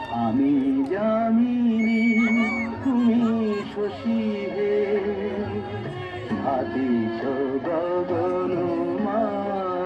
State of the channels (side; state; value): both; identical; correlation 1.00